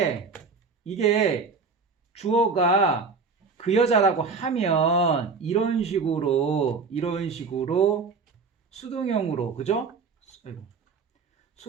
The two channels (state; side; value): quieter; left; 4.8 dB